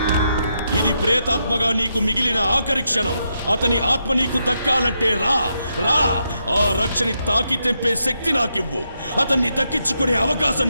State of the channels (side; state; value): both; inverted; correlation -0.82